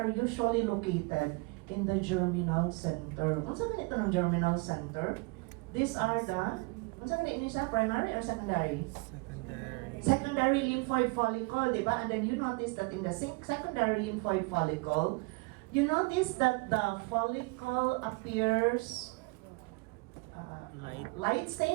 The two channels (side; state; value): left; quieter; 27.6 dB